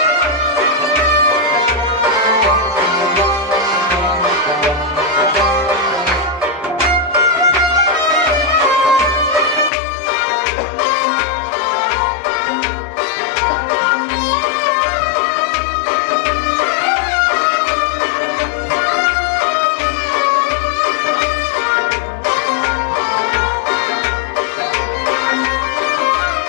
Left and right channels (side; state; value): right; drops out; at 9.7 s